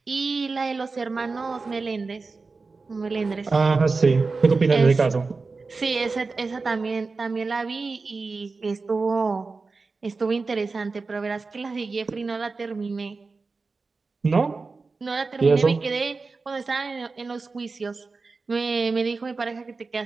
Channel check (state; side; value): quieter; left; 4.1 dB